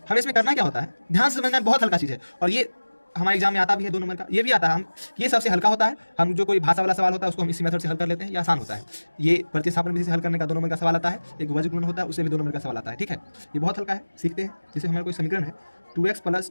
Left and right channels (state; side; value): inverted; both; correlation -1.00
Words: हमें इसमें करना क्या होता है, ध्यान से समझना, बहुत हल्का चीज है। और ये हमारे एग्जाम में आता भी है 2 नंबर का, ये भी आता है। हम ये सबसे हल्का होता है। हम जो कोई भाषा वाला सवाल होता है उसको हम इसी मेथड से हल कर लेते हैं, ये आसान होता है। ये प्रतिस्थापन विधि से हल करने का 2 नंबर का सवाल आता है। एक वज्र गुणन होता है, उससे भी 2 नंबर का सवाल आता है, ठीक है। ये बहुत हल्का है, सीखते हैं। जैसे हमारा कोई समीकरण है 2x +